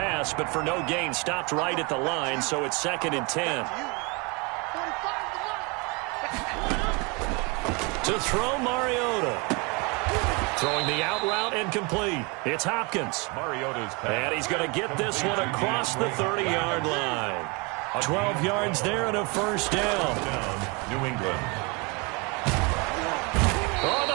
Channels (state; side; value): quieter; left; 29.3 dB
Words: but for no gain, stopped right at the line, so it's 2nd and 10. To throw, Mariota. Throwing the out route and complete. It's Hopkins. Mariota's pass. And he's going to get this one across the 30-yard line. 12 yards there and a 1st down. New England. Oh,